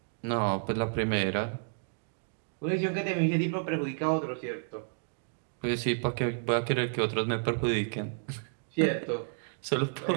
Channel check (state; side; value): silent; left; digital silence